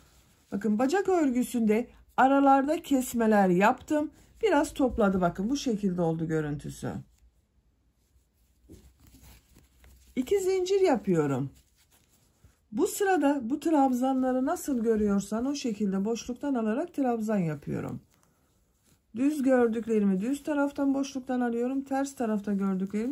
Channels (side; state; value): both; identical; correlation 1.00